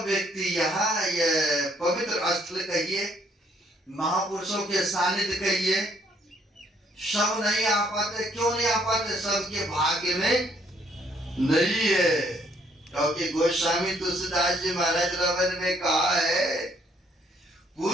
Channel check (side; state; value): both; normal; correlation 0.67